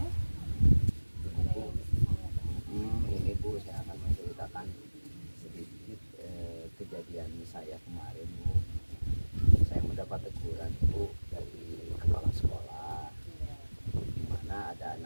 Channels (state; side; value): inverted; both; correlation -1.00